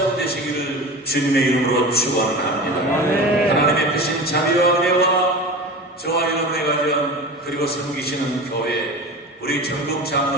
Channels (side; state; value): both; normal; correlation 0.31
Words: 주님의 이름으로 축원합니다. 하나님의 크신 자비와 은혜와 저와 여러분의 가정 그리고 섬기시는 교회 우리 전국